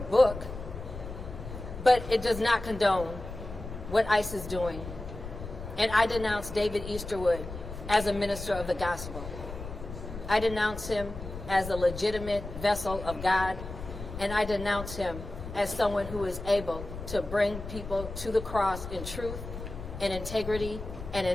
But it does not condone what ICE is doing. And I denounce David Easterwood as a minister of the gospel. I denounce him as a legitimate vessel of God, and I denounce him as someone who is able to bring people to the cross in truth and integrity and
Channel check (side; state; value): left; noise; rumble, 10 dB below the sound